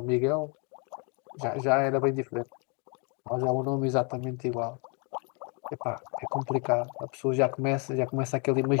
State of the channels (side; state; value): right; quieter; 34.7 dB